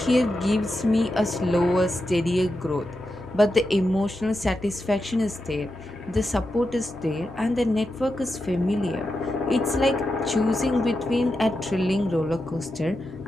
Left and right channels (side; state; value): both; normal; correlation 0.88